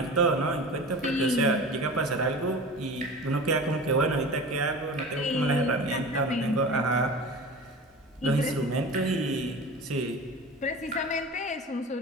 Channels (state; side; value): normal; both; correlation 0.35